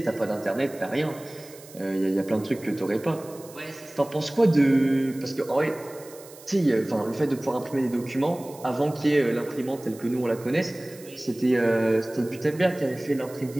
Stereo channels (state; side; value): noise; right; hiss, 20 dB below the sound